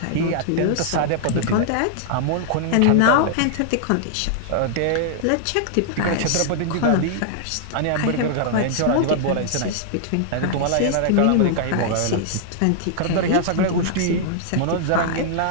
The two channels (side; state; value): both; different; correlation -0.01